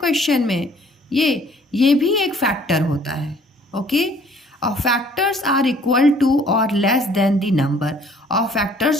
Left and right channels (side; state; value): both; normal; correlation 0.57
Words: में, ये भी एक फैक्टर होता है। ओके, और फैक्टर्स आर इक्वल टू और लेस देन द नंबर। और फैक्टर्स